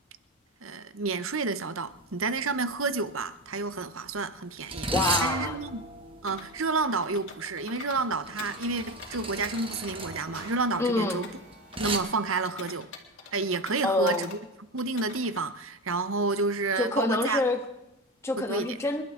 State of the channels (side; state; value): both; normal; correlation 0.20